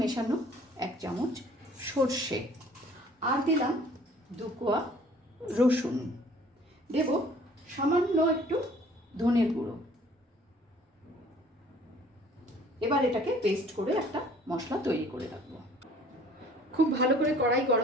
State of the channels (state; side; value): normal; both; correlation 0.54